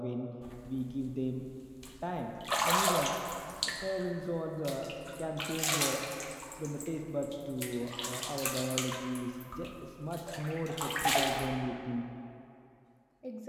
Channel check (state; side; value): identical; both; correlation 1.00